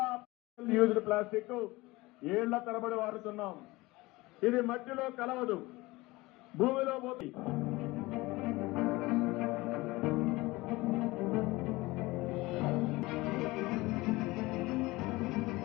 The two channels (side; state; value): right; quieter; 21.1 dB